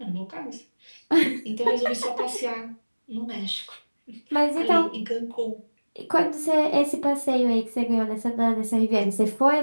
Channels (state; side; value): inverted; both; correlation -1.00